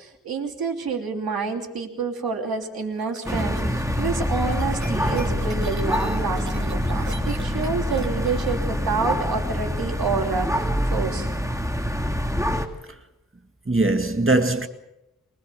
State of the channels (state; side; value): normal; both; correlation 0.62